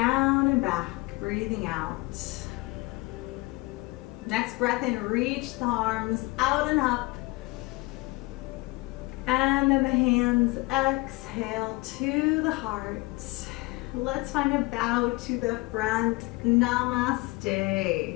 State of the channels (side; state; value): right; quieter; 23.9 dB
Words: and back, breathing out. Next breath in, reach the arms out and up. And then the hands exhale to the heart. Let's find a bow to the front.